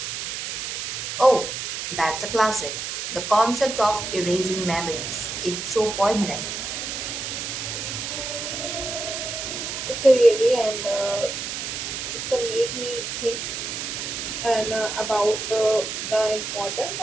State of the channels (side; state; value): right; noise; hiss, 4 dB below the sound